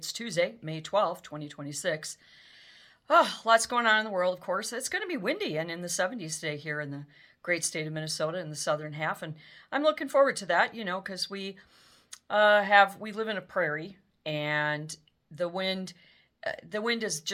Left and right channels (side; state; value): both; identical; correlation 1.00